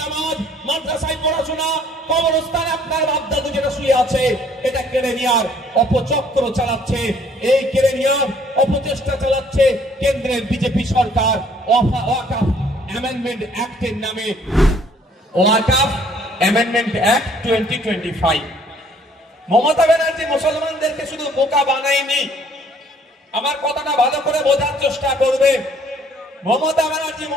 নামাজ, মাদ্রাসায় পড়াশোনা, কবরস্থানে আপনার বাপ-দাদু যেটা শুয়ে আছে, এটা কেড়ে নেওয়ার অপচক্র চালাচ্ছে। এই কেড়ে নেওয়ার অপচেষ্টা চালাচ্ছে কেন্দ্রের বিজেপি সরকার ওয়াকাফ অ্যামেন্ডমেন্ট অ্যাক্টের নামে। ওয়াকাফ অ্যামেন্ডমেন্ট অ্যাক্ট 2025। মমতা ব্যানার্জি মুসলমানদেরকে শুধু বোকা বানায়নি, আমার কথাটা ভালো করে বোঝার চেষ্টা করবে। মমতা ব্যানার্জি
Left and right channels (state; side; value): normal; both; correlation 0.60